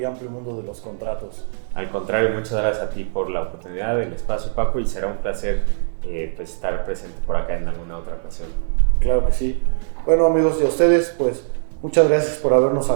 amplio mundo de los contratos. Al contrario, muchas gracias a ti por la oportunidad, el espacio, Paco, y será un placer pues estar presente por acá en alguna otra ocasión. Claro que sí. Bueno, amigos, y a ustedes, pues muchas gracias por habernos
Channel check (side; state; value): left; silent; 59 dB below the other